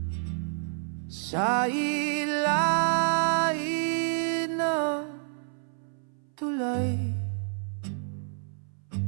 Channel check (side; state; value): left; silent; 58 dB below the other